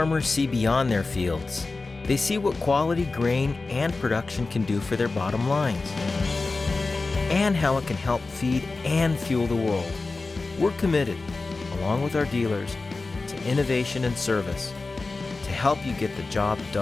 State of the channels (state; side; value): quieter; right; 3.7 dB